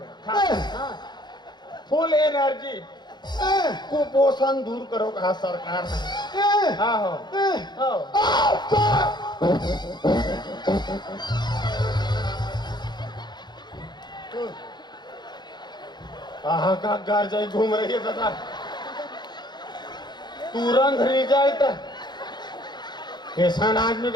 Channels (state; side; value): late; right; 0.21 ms